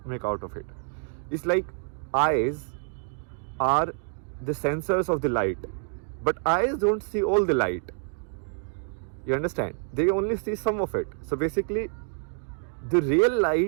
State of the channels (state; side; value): silent; left; 57 dB below the other